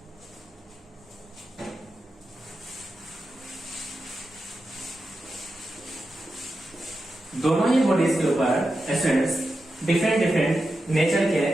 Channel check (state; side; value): normal; both; correlation 0.90